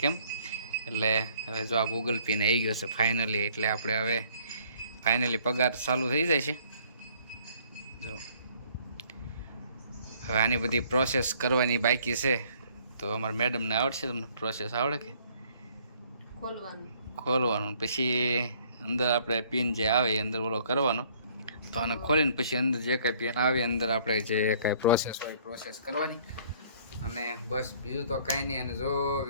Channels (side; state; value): both; inverted; correlation -0.60